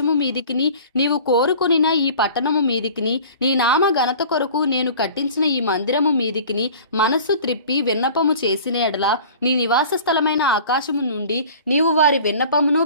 మీదికిని నీవు కోరుకొనిన ఈ పట్టణము మీదికిని నీ నామ ఘనత కొరకు నేను కట్టించిన ఈ మందిరము మీదికిని మనస్సు త్రిప్పి విన్నపము చేసిన ఎడల నీ నివాస స్థలమైన ఆకాశము నుండి నీవు వారి విన్నపమును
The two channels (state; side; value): inverted; both; correlation -0.44